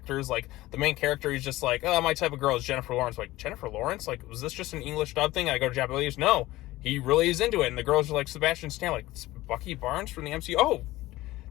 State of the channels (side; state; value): right; quieter; 17.6 dB